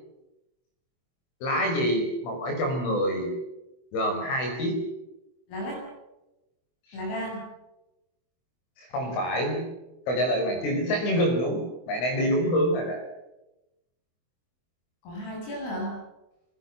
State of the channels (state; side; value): late; right; 24 ms